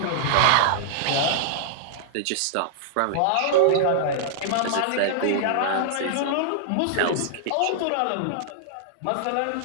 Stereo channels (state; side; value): different; both; correlation -0.01